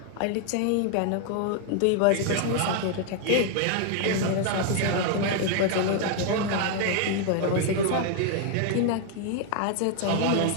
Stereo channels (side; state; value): both; different; correlation 0.00